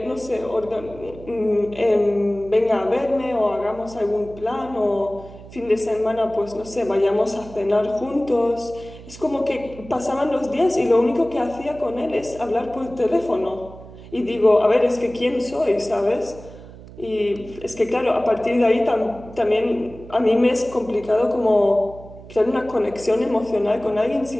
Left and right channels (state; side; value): noise; right; hum, 17 dB below the sound